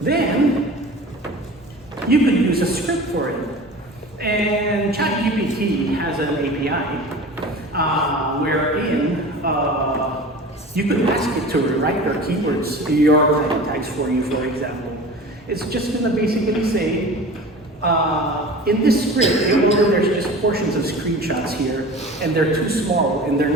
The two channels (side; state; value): both; normal; correlation 0.37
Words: you could use a script for it. And ChatGPT has an API wherein you could ask it to rewrite your keywords, your title tags for you, for example. It's just going to basically say, in this script, there's just portions of screenshots here, and they're too small, and they're